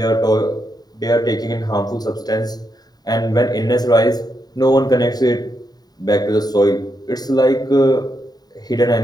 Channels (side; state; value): right; late; 0.19 ms